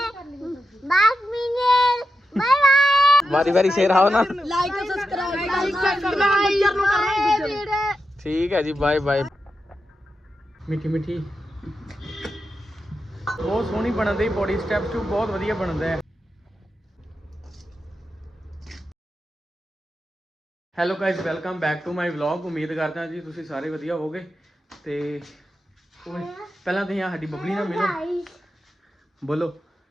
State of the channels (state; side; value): normal; both; correlation 0.89